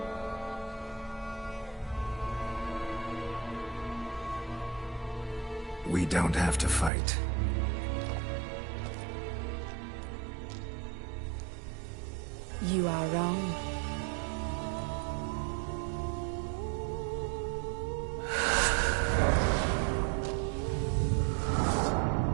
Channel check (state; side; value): drops out; left; at 6.9 s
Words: We don't have to fight. You are wrong.